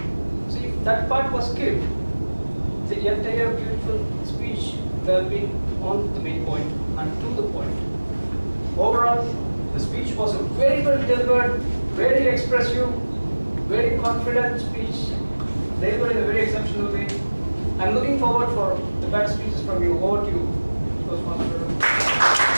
So if that part was skipped, the entire beautiful speech would have been on the main point and to the point. Overall, the speech was a very well delivered, very expressive, very confident speech, delivered in a very exceptional way. I'm looking forward for the better speeches from you. Over to you, Toastmaster.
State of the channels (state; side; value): inverted; both; correlation -1.00